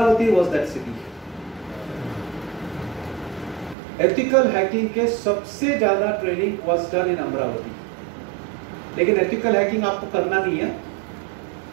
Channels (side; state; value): left; drops out; at 3.8 s